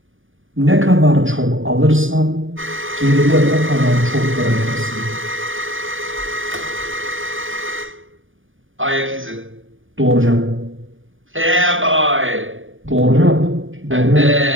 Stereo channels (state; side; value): late; left; 0.58 ms